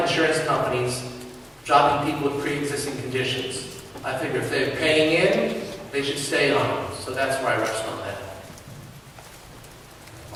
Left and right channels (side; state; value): both; identical; correlation 1.00